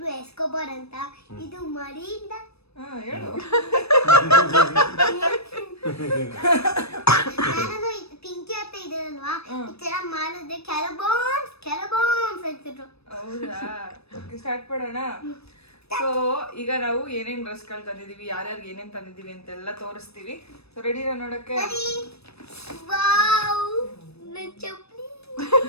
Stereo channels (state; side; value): late; right; 0.78 ms